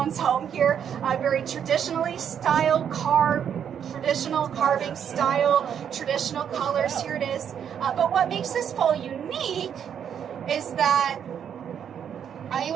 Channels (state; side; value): quieter; left; 8.5 dB